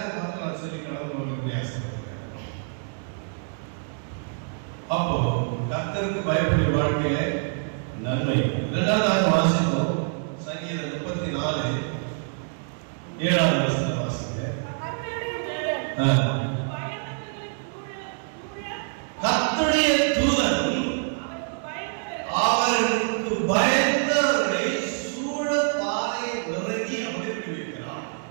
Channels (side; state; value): left; silent; 61 dB below the other